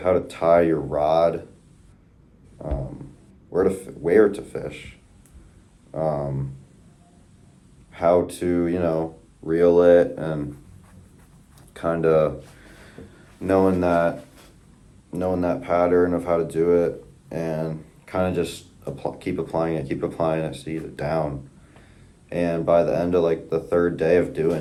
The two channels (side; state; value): both; identical; correlation 1.00